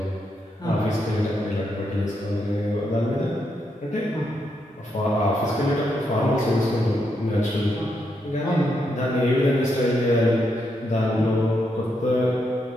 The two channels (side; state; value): both; normal; correlation 0.80